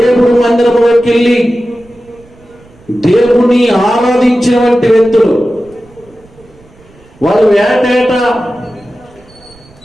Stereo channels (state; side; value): noise; right; rumble, 28 dB below the sound